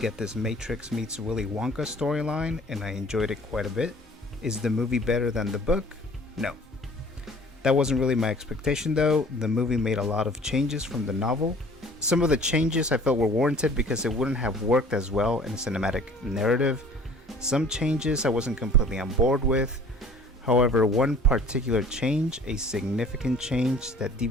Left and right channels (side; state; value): both; normal; correlation 0.50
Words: this Matrix meets Willy Wonka storyline and I enjoyed it quite a bit. Is the movie better than the book? No. That wasn't really my expectation though. The movie made a lot of changes from the novel. Some of the changes I felt were warranted because it wouldn't have worked as well in a cinematic narrative. Some changes I wasn't completely on board with. However, one particular change, a significant change that